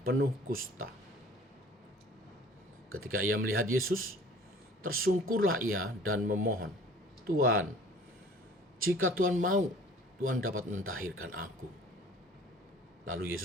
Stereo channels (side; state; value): both; normal; correlation 0.49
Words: penuh kusta. Ketika ia melihat Yesus, tersungkurlah ia dan memohon, "Tuhan, jika Tuhan mau, Tuhan dapat mentahirkan aku." Lalu